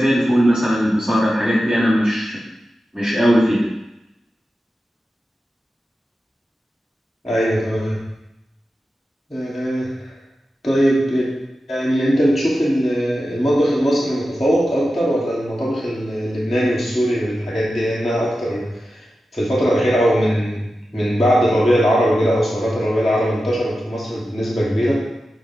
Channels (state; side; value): normal; both; correlation 0.92